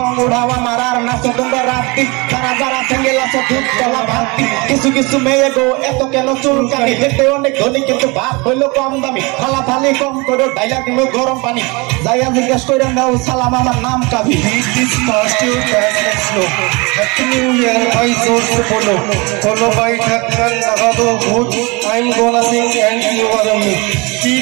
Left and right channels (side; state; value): left; quieter; 27.0 dB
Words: উড়াওয়া মারার নাচো তোমরা রাত্রি তারা যারা সিঙ্গেল আছো দুধ গলা ভাতি কিছু কিছু মেয়ে গো এত কেন চুলকানি হেঁটে অনেক ধনী কিন্তু ভাত হইলো কম দামি খালা থালি কম করে ডাইলা দিল গরম পানি যাইয়া জিজ্ঞেস করে নাও সালাম আমার নাম কাবি হ্যাপি নিউ ইয়ার ভাই জোর সে বলো কোনো ভাই ঢাকার লাগাবো ভূত I'm gonna sing and you are me